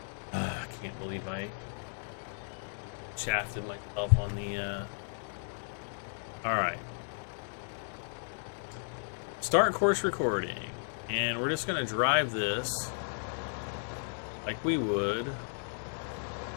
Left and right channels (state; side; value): silent; right; 55 dB below the other